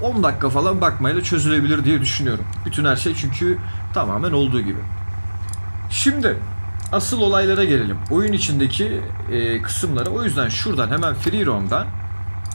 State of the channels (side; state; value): both; inverted; correlation -1.00